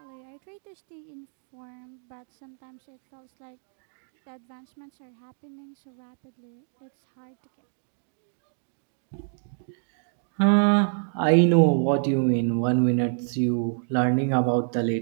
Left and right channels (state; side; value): silent; left; 60 dB below the other